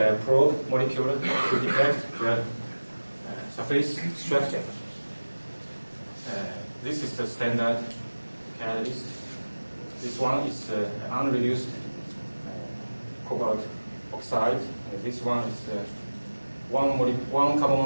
probe molecule to detect the surface structure. This is the standard catalyst. This one is unreduced cobalt oxide. This one is one carbon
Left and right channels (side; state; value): both; inverted; correlation -1.00